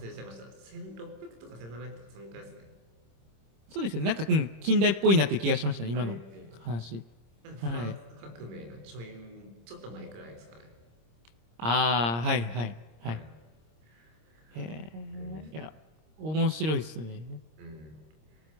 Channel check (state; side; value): late; left; 26 ms